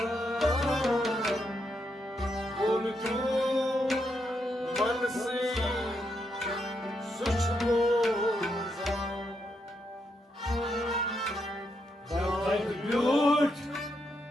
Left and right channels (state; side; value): normal; both; correlation 0.80